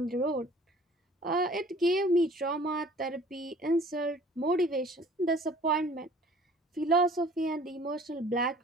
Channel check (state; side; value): normal; both; correlation 0.51